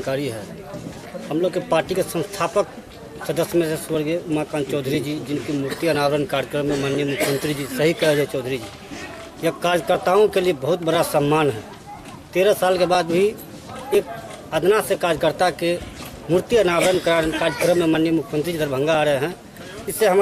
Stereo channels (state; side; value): identical; both; correlation 1.00